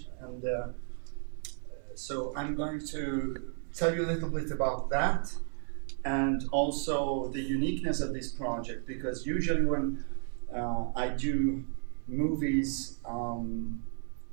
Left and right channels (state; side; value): silent; left; 56 dB below the other